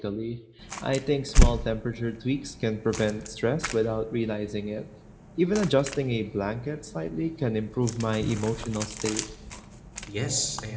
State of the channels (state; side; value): identical; both; correlation 1.00